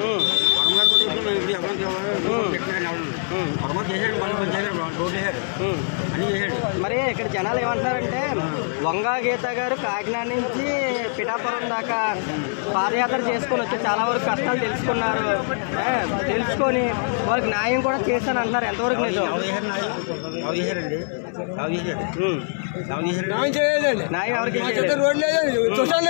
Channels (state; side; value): silent; right; 58 dB below the other